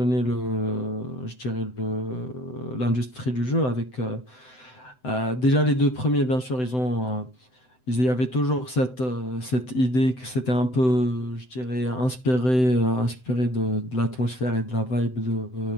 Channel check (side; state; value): right; late; 7.9 ms